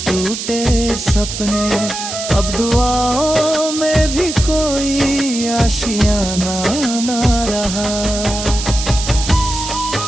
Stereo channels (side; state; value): right; noise; hiss, 6 dB below the sound